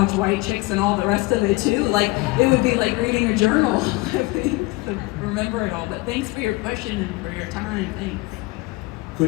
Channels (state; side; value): quieter; right; 23.0 dB